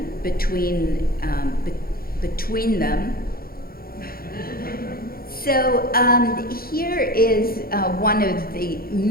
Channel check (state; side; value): late; right; 0.43 ms